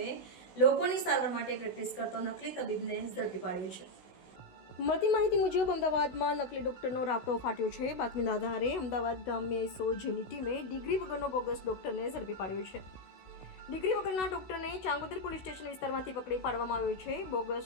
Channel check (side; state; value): right; late; 16 ms